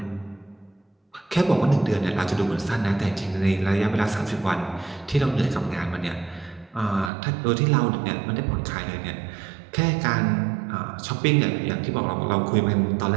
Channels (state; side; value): drops out; left; at 7.1 s